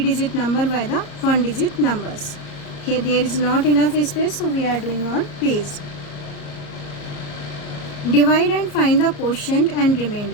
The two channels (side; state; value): right; late; 34 ms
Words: number by the 1-digit numbers. Here there is not enough space, so we are doing on page. Divide and find the quotient and